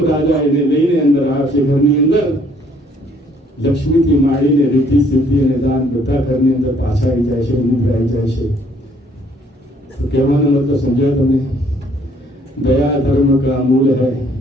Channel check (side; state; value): both; normal; correlation 0.63